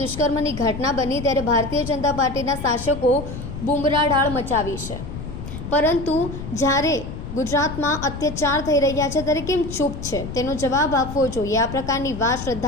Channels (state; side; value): noise; left; rumble, 9 dB below the sound